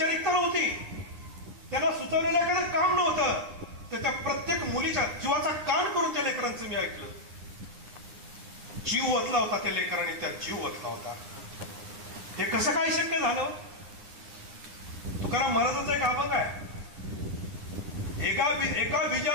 नव्हती, त्याला सुचवलेलं एखादं काम नव्हतं, तर त्या प्रत्येक मुलीच्या जीवाचा कान करून त्या लेकरांचं मी ऐकलं. जीव ओतला होता त्या लेकरांनी, त्या जीव ओतला होता. हे कसं काय शक्य झालं? तुकाराम महाराजांचा एक अभंग आहे, एका बीजा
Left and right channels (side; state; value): left; late; 9.7 ms